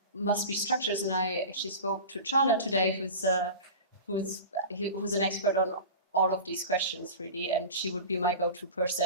must be structures. And I actually spoke to Charlotte today, who's an expert on all of these questions, really. And she would be my go-to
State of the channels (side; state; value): both; inverted; correlation -0.33